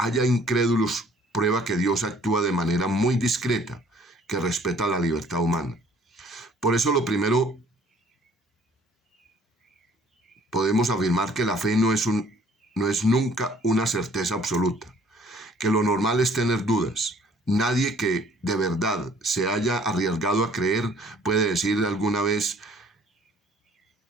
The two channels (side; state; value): both; normal; correlation 0.57